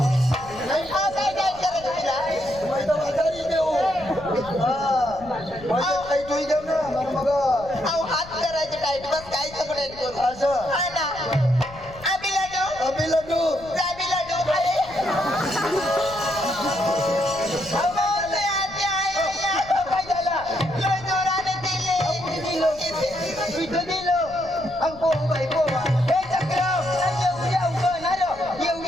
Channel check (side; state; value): left; noise; rumble, 19 dB below the sound